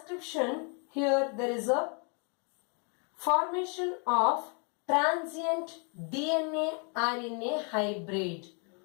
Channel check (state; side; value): quieter; right; 38.1 dB